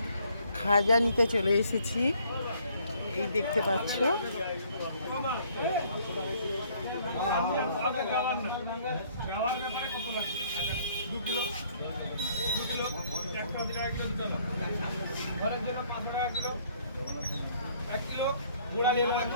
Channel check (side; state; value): both; inverted; correlation -0.62